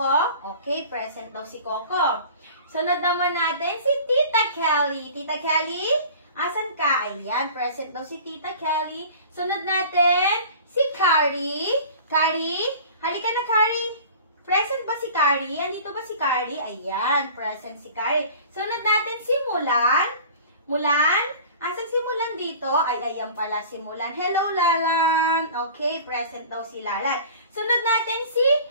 Okay, present daw si Coco. Sunod naman natin si Tita Kelly. Tita Kelly, asan ka? Ayan, present daw si Tita Kelly. Sunod natin si Carrie. Carrie, halika na, Carrie. Present ba si Carrie? Andito ba si Carrie? Ayan, present si Carrie. Sunod natin si Mulan. Mulan? Asan si Mulan dito? Ay, ayan pala si Mulan. Hello, Lalan. Okay, present daw si Lalan. Sunod natin si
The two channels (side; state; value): both; inverted; correlation -0.42